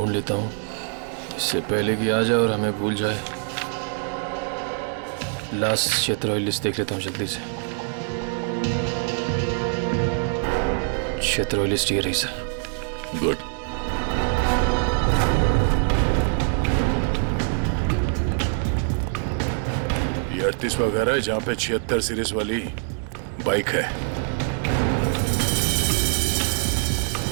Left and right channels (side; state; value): left; silent; 56 dB below the other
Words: लेता हूँ, इससे पहले कि आ जाए और हमें भूल जाए। लास्ट क्षेत्र लिस्ट देख लेता हूँ जल्दी से। क्षेत्र लिस्ट ये रही सर। गुड। ये 38वां घर है जहाँ पे 76 सीरीज वाली बाइक है।